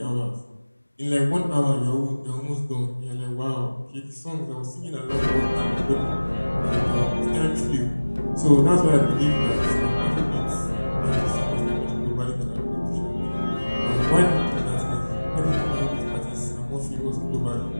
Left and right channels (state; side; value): inverted; both; correlation -1.00